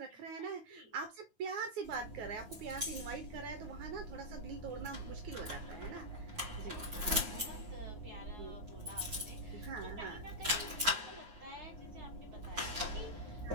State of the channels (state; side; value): late; left; 9.5 ms